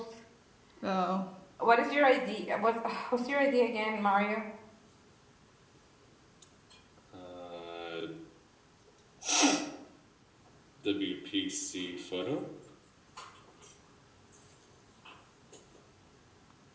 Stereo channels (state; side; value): identical; both; correlation 1.00